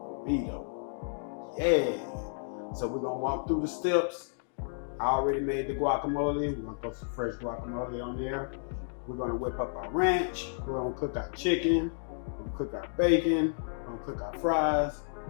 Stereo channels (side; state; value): right; silent; digital silence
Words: burrito. Yeah. So we're gonna walk through the steps. I already made the guacamole. We're gonna throw some fresh guacamole on there. We're gonna whip up our ranch. We're gonna cook our chicken. We're gonna cook our bacon. We're gonna cook our fries.